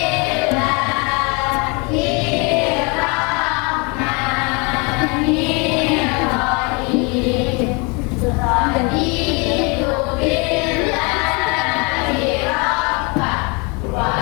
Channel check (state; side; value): quieter; right; 30.9 dB